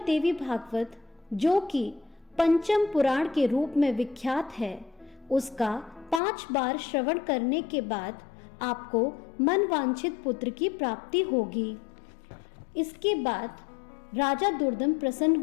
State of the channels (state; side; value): drops out; right; at 6.2 s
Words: देवी भागवत, जो कि पंचम पुराण के रूप में विख्यात है, उसका 5 बार श्रवण करने के बाद आपको मनवांछित पुत्र की प्राप्ति होगी। इसके बाद राजा दुर्दम प्रसन्न